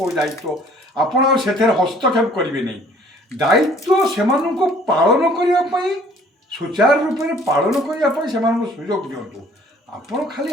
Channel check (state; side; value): normal; both; correlation 0.56